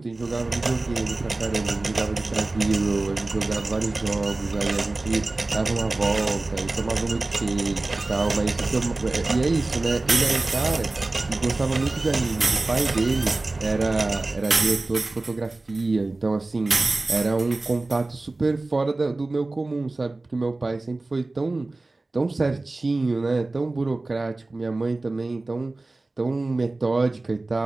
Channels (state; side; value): quieter; left; 3.1 dB